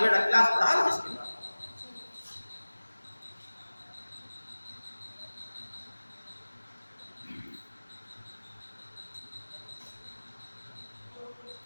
क्लास पढ़ा लो, इसके बाद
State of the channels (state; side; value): inverted; both; correlation -1.00